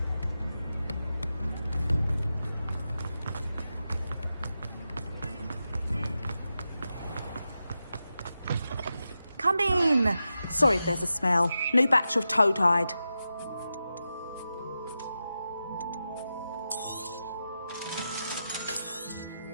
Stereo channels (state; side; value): inverted; both; correlation -0.90